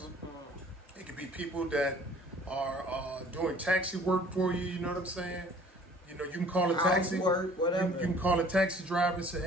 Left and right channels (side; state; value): both; normal; correlation 0.52